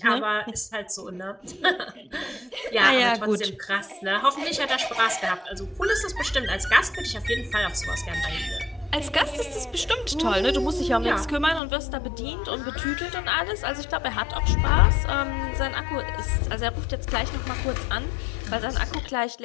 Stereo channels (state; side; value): drops out; right; at 11.6 s